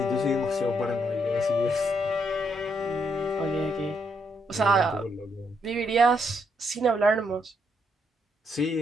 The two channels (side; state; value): both; normal; correlation 0.76